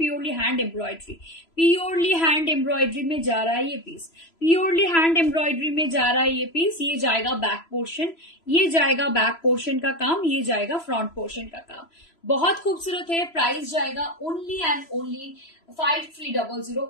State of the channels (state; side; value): late; right; 3.0 ms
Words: hand embroidery, purely hand embroidery में जा रहा है ये पीस, प्योरली हैंड एम्ब्रॉयडरी में जा रहा है ये पीस। ये जाएगा बैक पोर्शन, ये जाएगा बैक पोर्शन का काम, ये जाएगा फ्रंट पोर्शन का काम। बहुत खूबसूरत है, प्राइस जाएगा ओनली एंड ओनली 5300।